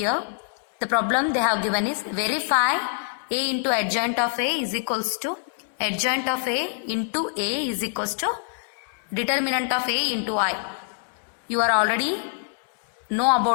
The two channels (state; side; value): silent; right; digital silence